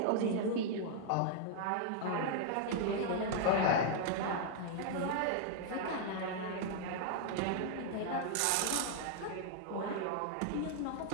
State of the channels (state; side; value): different; both; correlation -0.01